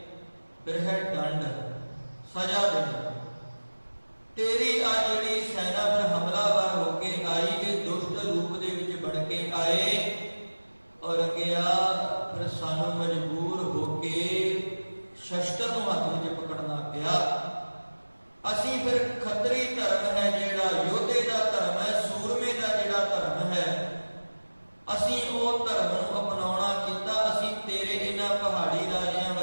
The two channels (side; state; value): both; inverted; correlation -1.00